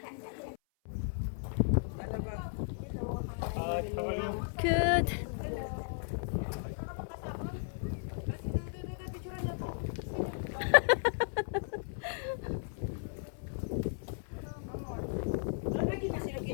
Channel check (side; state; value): right; silent; 54 dB below the other